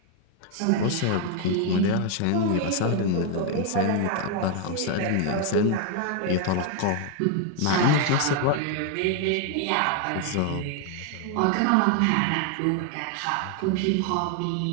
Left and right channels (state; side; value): different; both; correlation 0.01